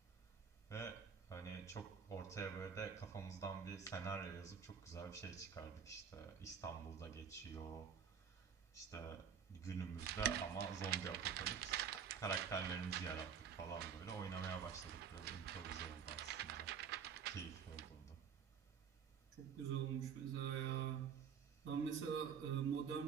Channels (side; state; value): left; quieter; 7.2 dB